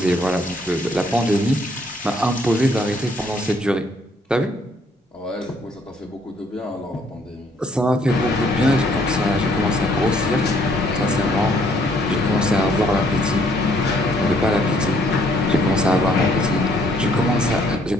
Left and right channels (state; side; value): normal; both; correlation 0.65